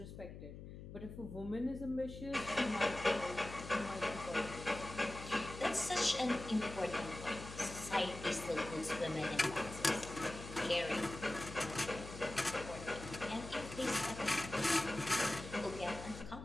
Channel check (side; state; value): left; noise; hum, 11 dB below the sound